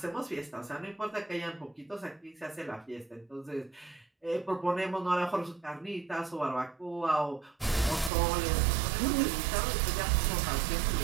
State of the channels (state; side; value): drops out; left; at 8.1 s